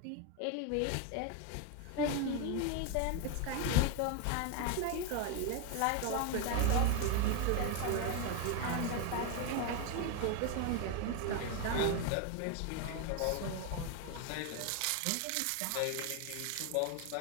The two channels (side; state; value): both; different; correlation 0.01